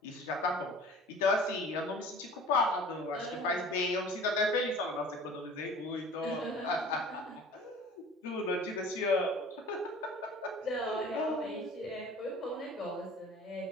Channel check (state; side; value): normal; both; correlation 0.45